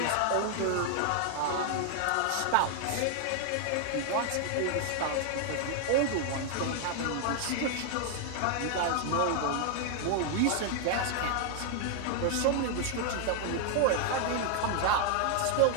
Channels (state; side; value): different; both; correlation 0.00